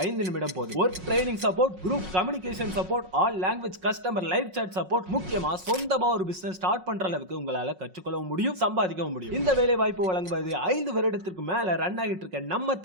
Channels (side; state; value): left; late; 5.5 ms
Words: 5 நிமிடம் போதும். Work training support, group communication support, all language customer live chat support, முக்கியமா சொந்தமா ஒரு பிசினஸ் ஸ்டார்ட் பண்ற அளவுக்கு உங்களால கற்றுக்கொள்ளவும் முடியும், சம்பாதிக்கவும் முடியும். இந்த வேலை வாய்ப்பு வழங்குவது 5 வருடத்திற்கு மேல ரன் ஆகிட்டு இருக்க நம்ம